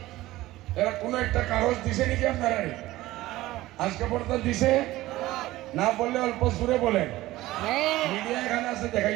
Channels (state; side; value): quieter; left; 17.1 dB